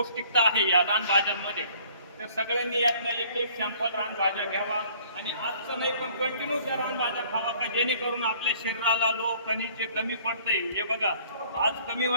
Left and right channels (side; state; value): both; inverted; correlation -0.56